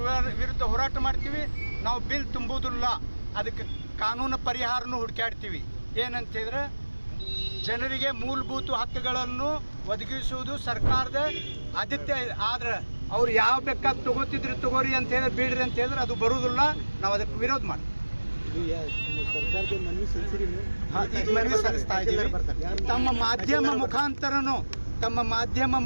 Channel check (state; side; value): inverted; both; correlation -1.00